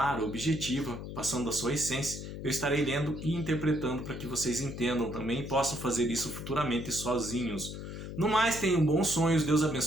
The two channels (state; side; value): noise; left; hum, 8 dB below the sound